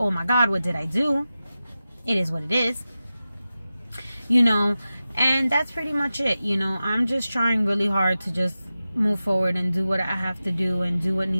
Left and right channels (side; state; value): both; inverted; correlation -0.94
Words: oh my God, what did I do? It is what it is, you know, and that's pretty much it. You know, I'm just trying really hard to just move forward and do what I have to do and do what